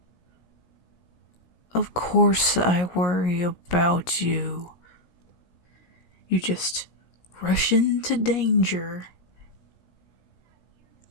Of course I worry about you. You just rush into danger.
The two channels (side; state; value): right; late; 17 ms